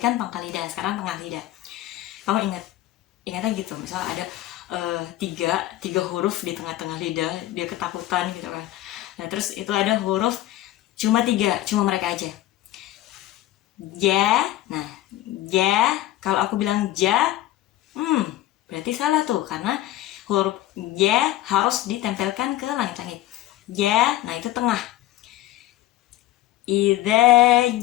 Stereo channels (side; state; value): right; quieter; 14.8 dB